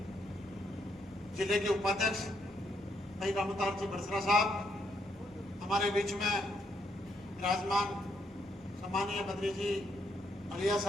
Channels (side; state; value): both; normal; correlation 0.75